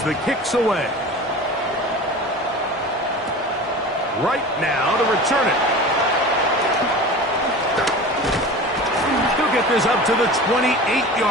the kick's away. Right now to return it. He'll get this up to the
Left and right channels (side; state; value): both; normal; correlation 0.35